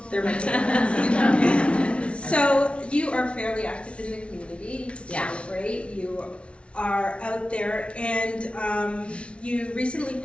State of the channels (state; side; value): late; right; 0.060 ms